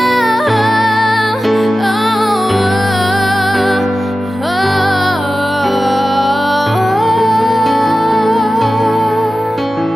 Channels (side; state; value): both; normal; correlation 0.94